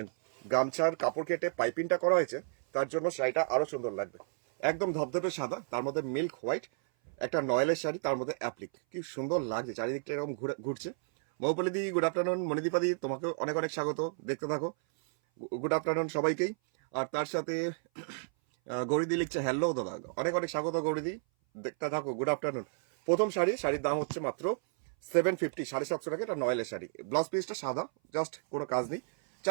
গামছার কাপড় কেটে পাইপিংটা করা হয়েছে, তার জন্য শাড়িটা আরো সুন্দর লাগবে। একদম ধবধবে সাদা, তার মধ্যে মিল্ক হোয়াইট, একটা নয়েলের শাড়ি, তার মধ্যে অ্যাপ্লিক। কি সুন্দর লাগছে, চারিদিকটা এরকম ঘুরছে। মৌপলি দি, গুড আফটারনুন। মণিদীপা দি, তোমাকে অনেক অনেক স্বাগত। দেখতে থাকো, গুড আফটারনুন সবাইকেই। আর তার সাথে গৌরীদি লিখছে হ্যালো দাদা, অনেক অনেক স্বাগত গৌরীদি। দেখতে থাকো, গুড আফটারনুন। প্রথম শাড়ির দাম হচ্ছে মাত্র 750, 750 টাকা। এটা নয়েলের শাড়ি। ব্লাউজ পিসটা সাদা, জাস্ট কোনো কাজ নেই।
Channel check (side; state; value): left; silent; 56 dB below the other